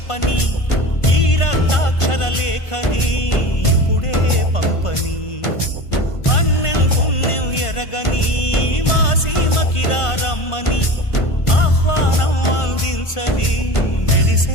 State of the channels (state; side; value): late; right; 1.5 ms